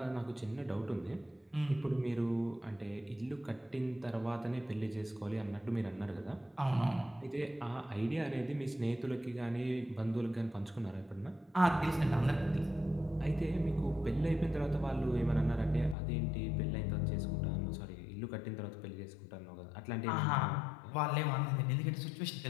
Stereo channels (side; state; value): right; drops out; at 16.0 s